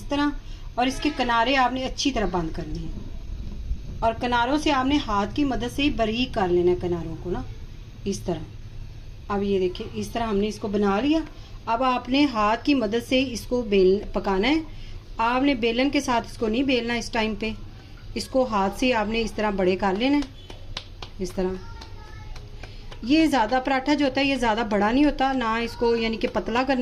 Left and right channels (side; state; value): both; identical; correlation 1.00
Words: तरह, और इसके किनारे आपने अच्छी तरह बंद करने हैं, और किनारों से आपने हाथ की मदद से ही बारीक कर लेना है किनारों को ना, इस तरह। अब ये देखिए इस तरह हमने इसको बना लिया। अब आपने हाथ की मदद से इसको पकाना है। आपने बेलन के साथ इसको नहीं बेलना इस टाइम पे, इसको हाथ से आपने इस तरह बड़े कर लेना है इस तरह। ये ज़्यादा पराठा जो होता है ये ज़्यादा बड़ा नहीं होता ना, इसको यानी कि पतला